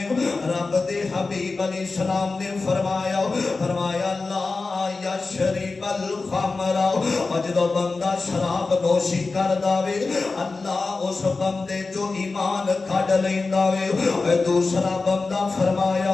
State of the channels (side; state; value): right; quieter; 3.9 dB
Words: رب دے حبیب علیہ السلام نے فرمایا لا یشرب الخمر اجدو بندہ شراب نوشی کر داوے اللہ اس بندے جو ایمان کھڑ لینداوے دوسرا بندہ فرمایا